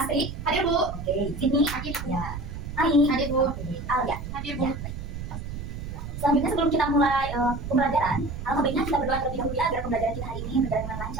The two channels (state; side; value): noise; right; rumble, 8 dB below the sound